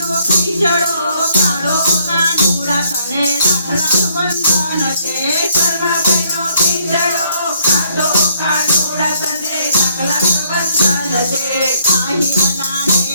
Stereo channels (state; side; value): inverted; both; correlation -0.67